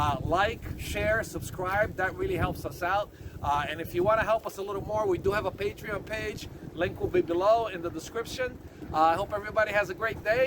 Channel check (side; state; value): both; identical; correlation 1.00